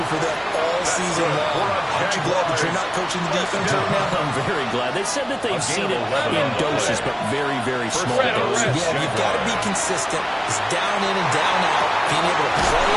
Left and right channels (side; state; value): both; identical; correlation 1.00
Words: for them all season long. Aren't you glad that you're not coaching the defense right now? I'm very glad. They said that they've seen it in doses, but very, very small doses. Yeah, you've got to be consistent. It's down in and down out. Being able to play